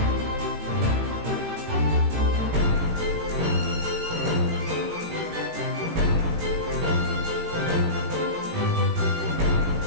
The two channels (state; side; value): late; left; 18 ms